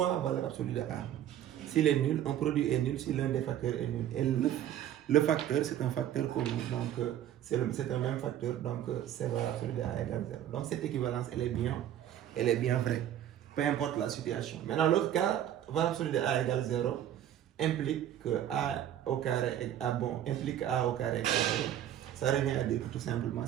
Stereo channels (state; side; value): quieter; left; 11.2 dB